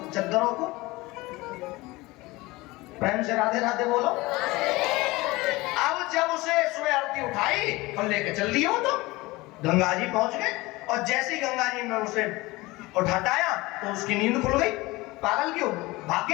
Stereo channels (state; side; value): quieter; right; 21.3 dB